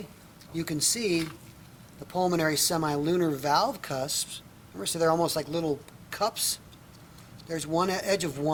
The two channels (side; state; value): both; identical; correlation 1.00